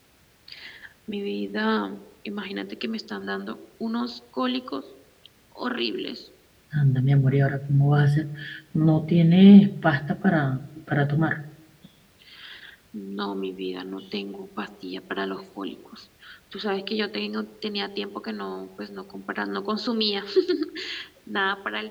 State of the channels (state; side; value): identical; both; correlation 1.00